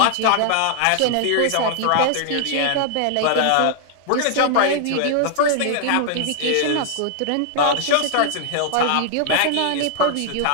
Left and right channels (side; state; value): both; different; correlation 0.00